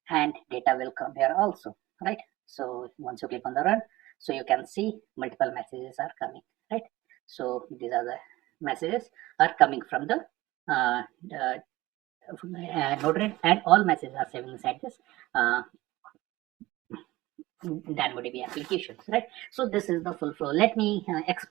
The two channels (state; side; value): quieter; left; 18.5 dB